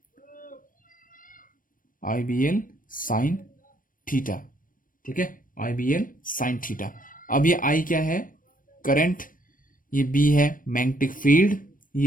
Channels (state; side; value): late; right; 0.40 ms